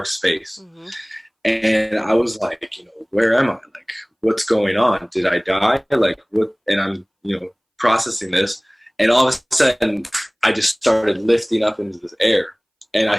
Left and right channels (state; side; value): identical; both; correlation 1.00